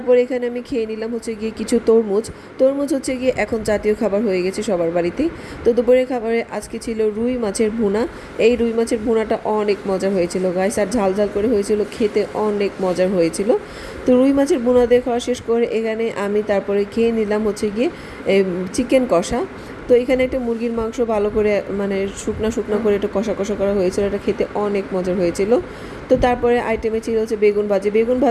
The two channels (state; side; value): identical; both; correlation 1.00